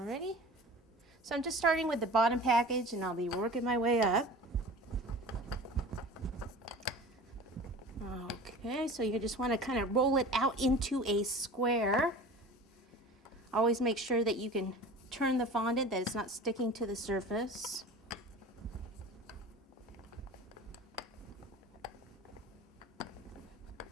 So I'm just starting with the bottom package and I'll be working my way up. Okay, so you just want to kind of roll it out into a square. Always make sure that you can turn the fondant, that it's not sticking to the surface.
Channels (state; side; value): normal; both; correlation 0.38